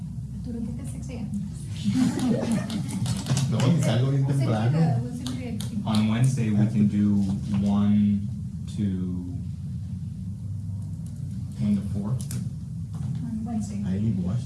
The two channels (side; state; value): both; identical; correlation 1.00